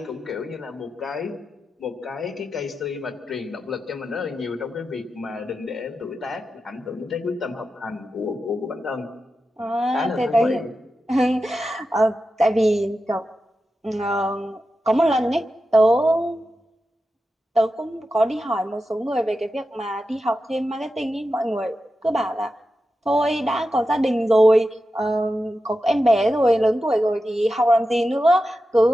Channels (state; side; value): normal; both; correlation 0.91